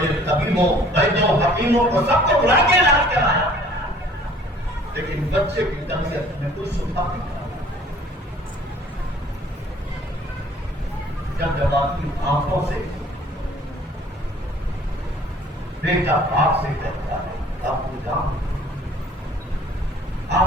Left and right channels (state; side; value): normal; both; correlation 0.53